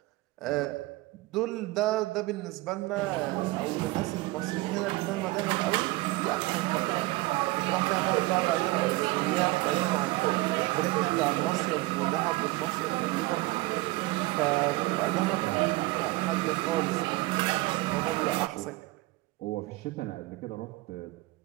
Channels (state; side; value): quieter; left; 20.7 dB